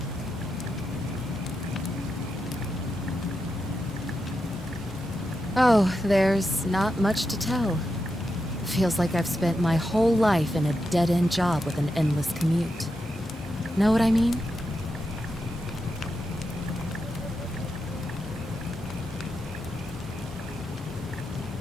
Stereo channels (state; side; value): normal; both; correlation 0.87